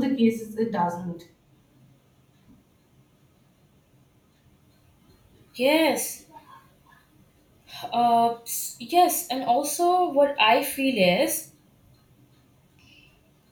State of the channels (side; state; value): both; identical; correlation 1.00